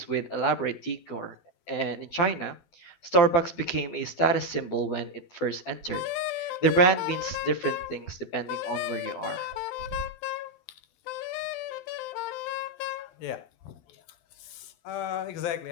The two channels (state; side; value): late; right; 12 ms